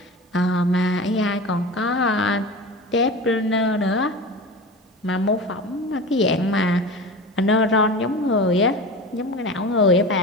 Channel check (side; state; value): both; normal; correlation 0.31